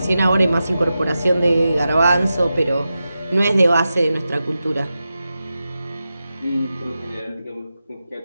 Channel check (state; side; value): inverted; both; correlation -0.91